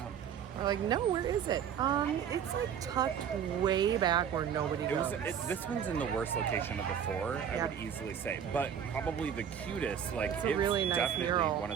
We're like, no, where is it? It's like tucked way back where nobody goes. This one's in the worst location of the four, I would easily say, but probably the cutest. Like It's a really nice definitely mural. one of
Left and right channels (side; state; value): left; quieter; 8.4 dB